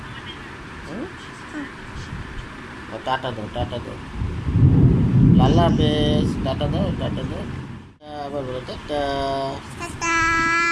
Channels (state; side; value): identical; both; correlation 1.00